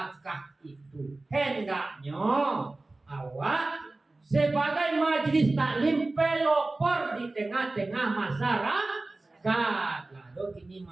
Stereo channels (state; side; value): quieter; left; 3.1 dB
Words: itu. Hendaknya awak sebagai majlis taklim pelopor di tengah-tengah masyarakat. Lalu kini